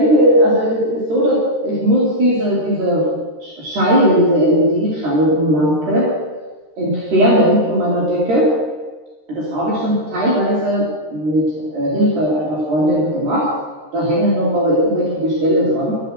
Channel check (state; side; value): late; left; 13 ms